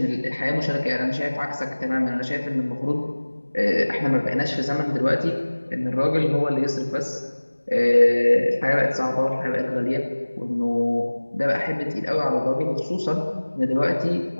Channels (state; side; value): inverted; both; correlation -1.00